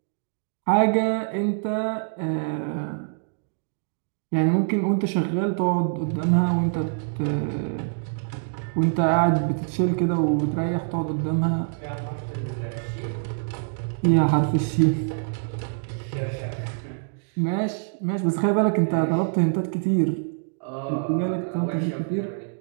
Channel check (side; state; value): left; silent; digital silence